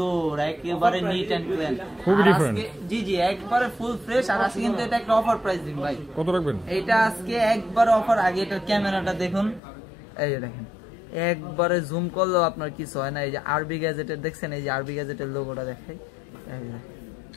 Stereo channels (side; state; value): right; drops out; at 9.6 s